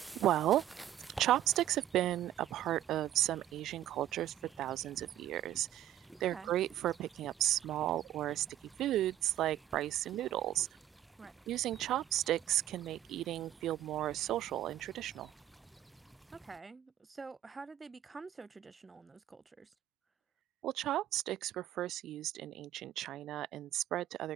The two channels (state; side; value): quieter; left; 12.6 dB